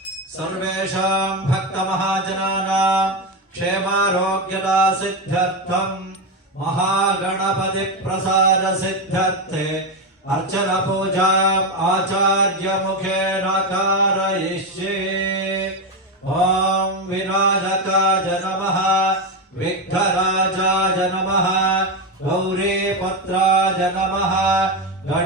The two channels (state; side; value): normal; both; correlation 0.12